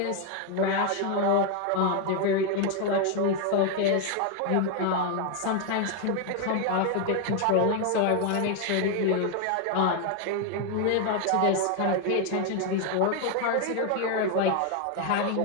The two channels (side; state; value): both; different; correlation 0.01